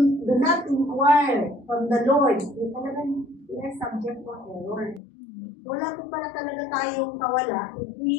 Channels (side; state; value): right; drops out; at 5.0 s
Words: do not inquire from the Lord, talagang we are subject to error. Wala po pala talaga tayong kawala if